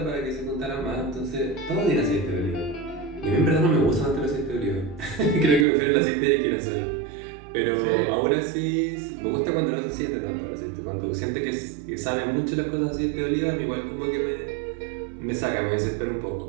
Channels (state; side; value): drops out; left; at 5.7 s